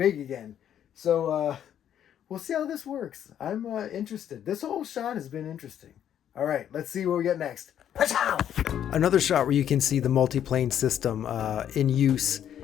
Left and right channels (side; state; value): right; quieter; 10.0 dB